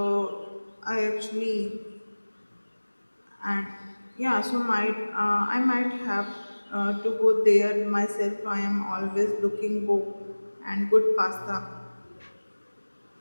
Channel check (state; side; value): inverted; both; correlation -1.00